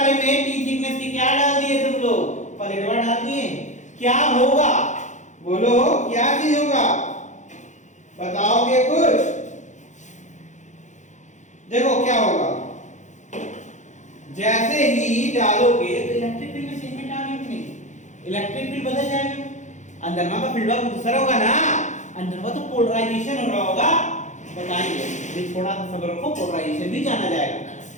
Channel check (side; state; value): right; late; 0.35 ms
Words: में टी थिकनेस की क्या डाल दिए तुम लोग? प्लेटवा डाल दिए। क्या होगा? बोलो क्या चीज होगा? बताओगे कुछ? देखो क्या होगा, जैसे ही डालोगे तो इलेक्ट्रिक फील्ड में चेंजमेंट आ गई कि नहीं? इलेक्ट्रिक फील्ड बदल जाएगा। अंदर में फील्ड का दूसरा होगा ना, अंदर में तो पोलराइजेशन हो रहा होगा। बताइए, ये थोड़ा सा सब्र रखो, पोलराइजेशन भी जाना जाएगा